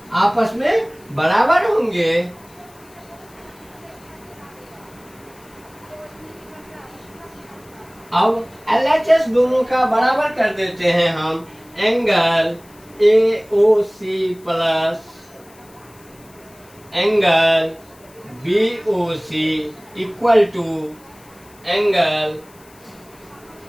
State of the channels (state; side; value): noise; left; hiss, 26 dB below the sound